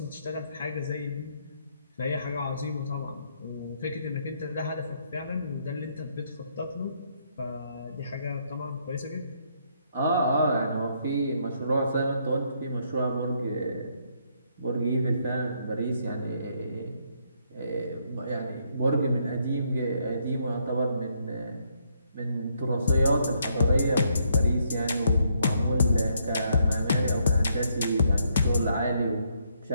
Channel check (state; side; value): inverted; both; correlation -0.73